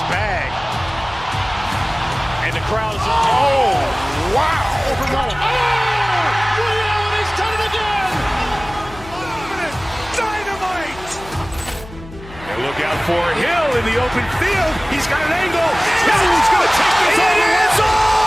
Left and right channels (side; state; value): left; noise; hum, 17 dB below the sound